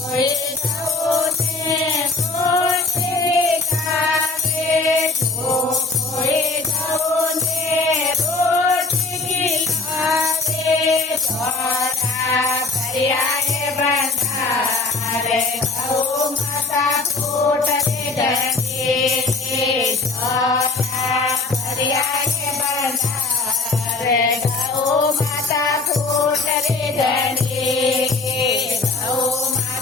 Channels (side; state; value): right; quieter; 3.6 dB